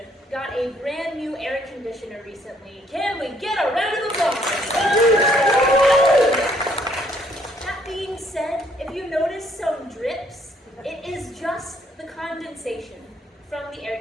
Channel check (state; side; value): normal; both; correlation 0.66